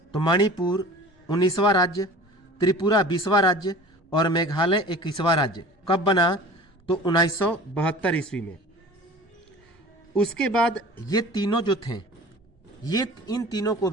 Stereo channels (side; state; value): both; normal; correlation 0.42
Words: तो मणिपुर 19वां राज्य, त्रिपुरा 20वां राज्य और मेघालय 21वां राज्य कब बना? तो 1972 ईस्वी में। उसके बाद ये तीनों जो थे, इन तीनों को